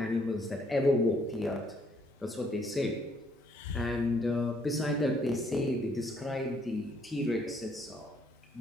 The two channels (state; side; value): normal; both; correlation 0.67